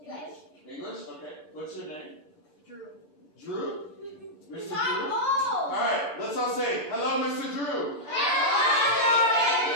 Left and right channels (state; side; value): late; right; 6.8 ms